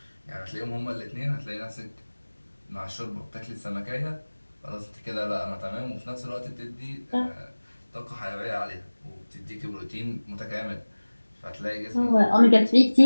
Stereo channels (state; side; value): inverted; both; correlation -1.00